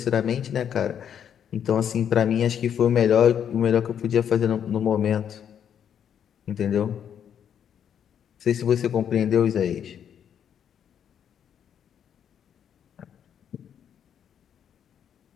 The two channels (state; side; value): quieter; right; 8.8 dB